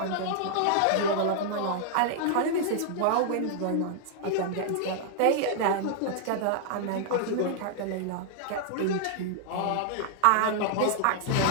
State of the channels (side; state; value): both; different; correlation -0.01